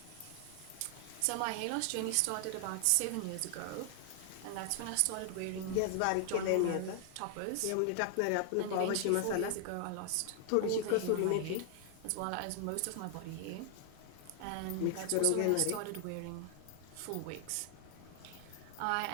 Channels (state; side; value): different; both; correlation 0.00